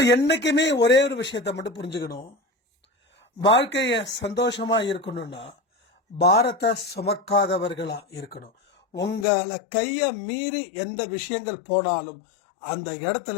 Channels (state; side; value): drops out; right; at 9.2 s